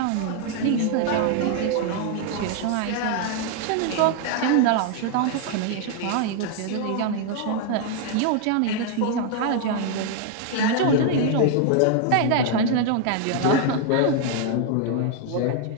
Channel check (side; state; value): both; different; correlation 0.00